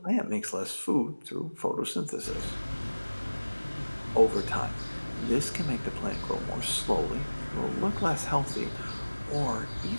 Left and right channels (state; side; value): inverted; both; correlation -1.00